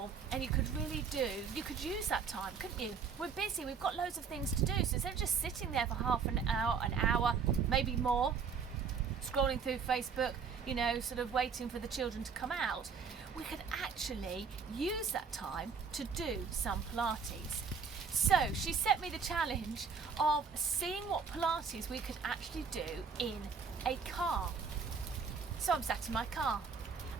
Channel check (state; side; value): quieter; left; 5.8 dB